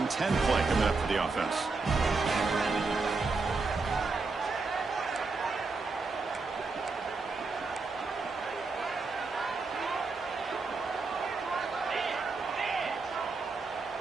10 play coming up for the offense.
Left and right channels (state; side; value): quieter; left; 4.0 dB